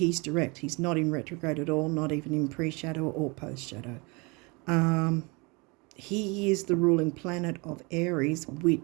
direct. He's not in retrograde at all, not even in pre-shadow or post-shadow. He is the ruling planet of Aries,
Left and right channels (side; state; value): left; quieter; 28.5 dB